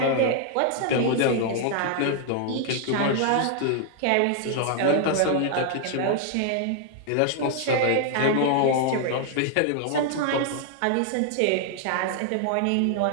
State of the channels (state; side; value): different; both; correlation 0.00